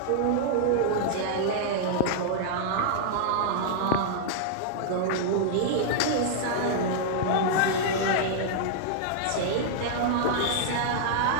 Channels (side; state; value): both; different; correlation -0.01